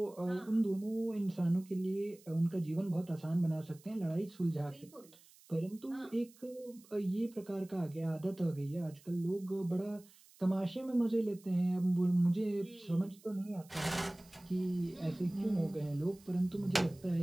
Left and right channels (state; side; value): noise; right; hiss, 25 dB below the sound